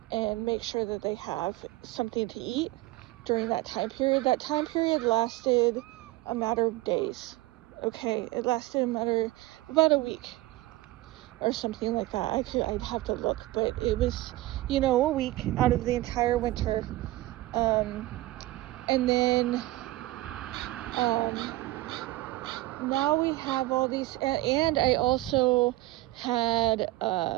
and make sure that they have something to eat during that time period. That time period lasted a matter of days. Okay, it lasted about a week or something like that. I'd have to look, but it was, a week out of the entire winter. And then, now we have all these, and I also had,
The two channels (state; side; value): quieter; left; 18.0 dB